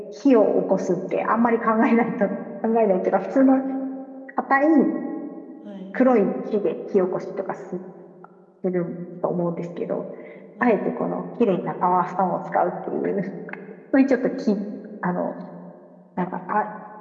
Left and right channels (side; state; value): both; identical; correlation 1.00